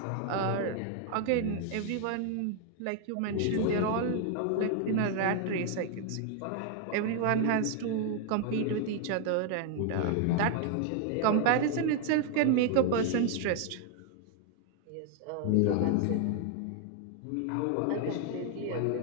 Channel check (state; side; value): different; both; correlation 0.00